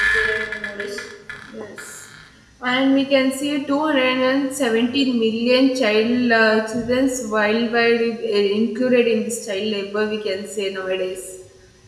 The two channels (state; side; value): identical; both; correlation 1.00